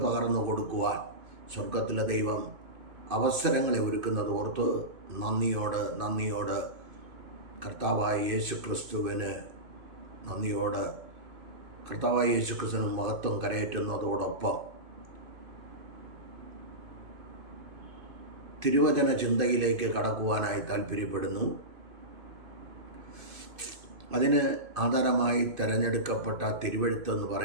പകർന്നു കൊടുക്കുവാൻ സ്വർഗത്തിലെ ദൈവം അവസരങ്ങളെ ഒരുക്കുന്നത് ഓർത്ത് നന്ദിയോട് കർത്താവായ യേശുക്രിസ്തുവിന് നന്ദിയോട് കർത്താവായ യേശുക്രിസ്തുവിന് മഹത്വം കരയേറ്റുന്നതോടൊപ്പം തിരുവചന ചിന്തയിലേക്ക് കടക്കുവാനായി താല്പര്യപ്പെടുന്നു. അതിന് ആധാരമായി തിരഞ്ഞെടുക്കപ്പെട്ട തിരുവെഴുത്തെന്ന്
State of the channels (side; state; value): left; late; 2.5 ms